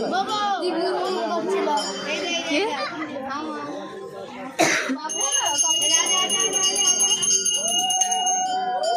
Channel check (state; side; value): identical; both; correlation 1.00